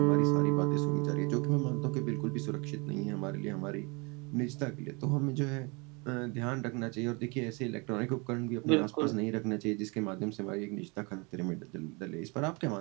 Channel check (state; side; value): quieter; left; 29.8 dB